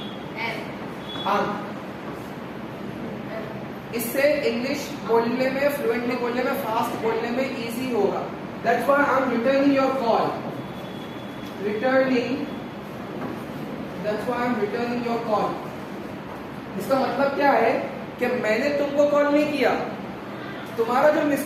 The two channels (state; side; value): identical; both; correlation 1.00